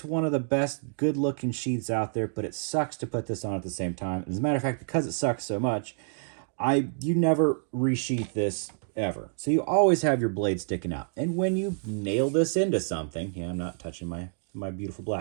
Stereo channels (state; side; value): silent; left; digital silence